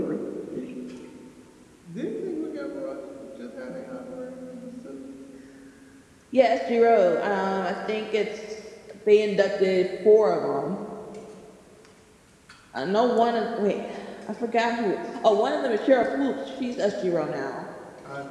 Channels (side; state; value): both; identical; correlation 1.00